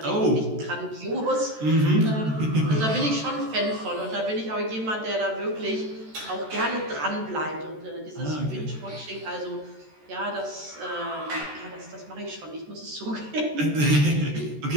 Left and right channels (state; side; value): late; left; 13 ms